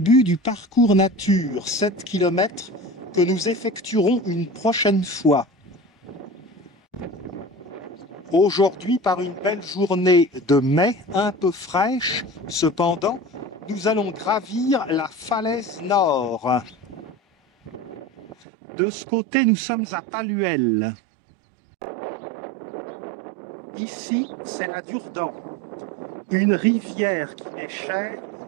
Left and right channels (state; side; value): drops out; left; at 18.4 s